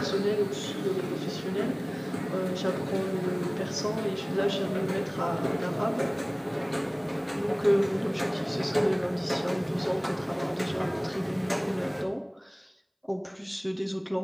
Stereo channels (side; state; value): both; identical; correlation 1.00